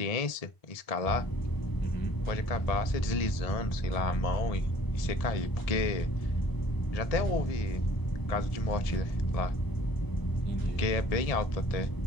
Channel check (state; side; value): late; right; 1.7 ms